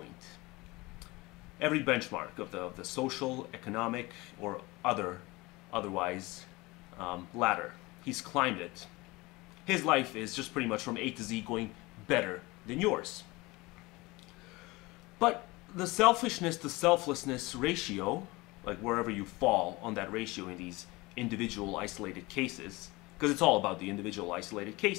every benchmark of the social, economic, or otherwise ladder. He's climbed it. His life is just pretty much from A to Z going better than yours. But the selfishness to selflessness ratio, like wherever you fall on that ratio in these individual isolated cases, because it's all about the individual isolated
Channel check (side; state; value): right; quieter; 22.6 dB